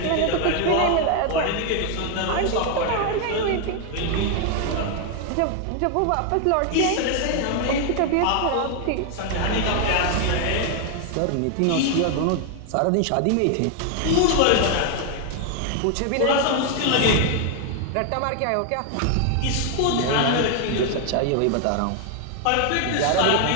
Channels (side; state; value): both; different; correlation 0.01